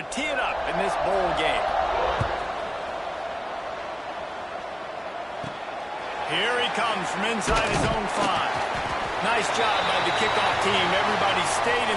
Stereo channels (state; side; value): identical; both; correlation 1.00